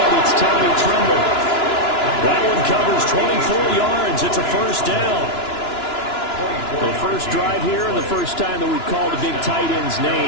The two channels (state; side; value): late; right; 2.9 ms